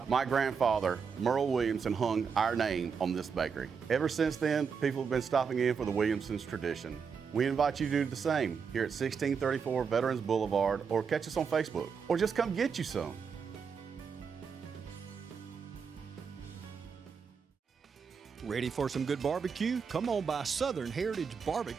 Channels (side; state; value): left; quieter; 6.1 dB